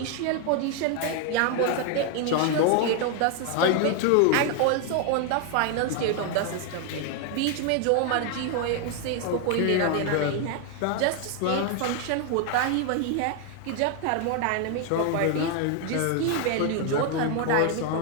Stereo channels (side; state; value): both; different; correlation 0.00